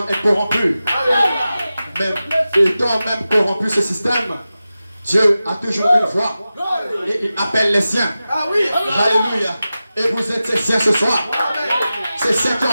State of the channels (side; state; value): both; inverted; correlation -0.94